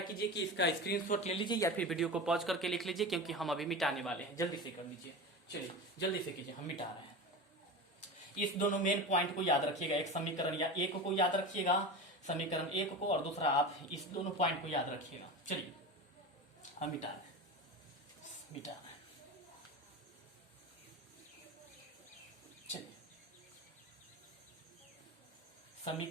कीजिए कि इसका स्क्रीनशॉट ले लीजिए या फिर वीडियो को पॉज करके लिख लीजिए, क्योंकि हम अभी मिटाने वाले हैं। जल्दी से कर लीजिए, चलिए जल्दी से कीजिए, हम मिटा रहे हैं। इस दोनों मेन पॉइंट को याद रखिएगा, एक समीकरण या एक को याद रखिएगा, समीकरण एक को, और दूसरा आप इस दोनों पॉइंट को याद रखिएगा। चलिए हम मिटा रहे हैं। चलिए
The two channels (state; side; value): normal; both; correlation 0.27